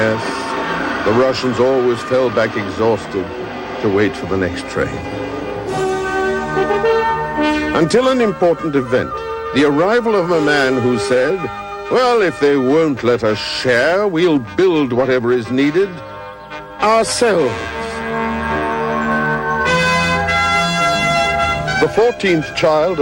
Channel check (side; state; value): both; identical; correlation 1.00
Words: the Russians always fell back exhausted to wait for the next train. Until an important event, the arrival of a man who said, well, if they won't let us share, we'll build whatever is needed ourselves. The 14th child